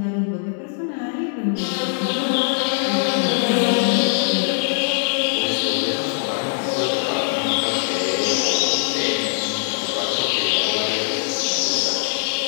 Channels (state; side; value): silent; right; digital silence